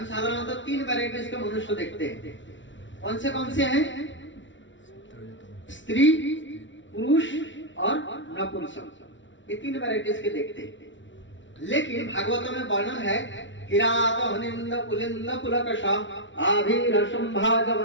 साधारणतः 3 वैरायटीज के मनुष्य देखते हैं। कौन से हैं? स्त्री, पुरुष और नपुंसक, ये 3 वैरायटीज के देखते हैं। लेकिन भागवत में वर्णन है किरात हनिंद पुलिंद पुलकश आभिरशंभा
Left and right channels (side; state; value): right; late; 0.55 ms